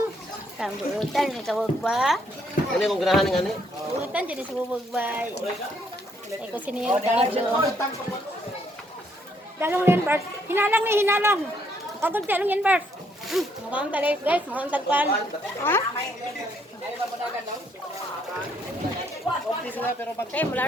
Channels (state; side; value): normal; both; correlation 0.70